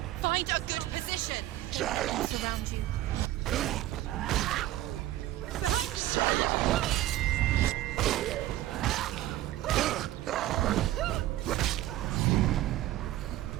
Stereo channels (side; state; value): left; quieter; 14.7 dB